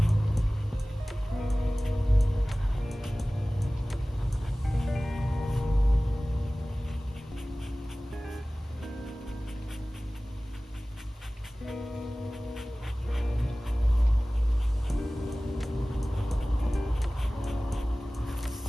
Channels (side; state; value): both; normal; correlation 0.98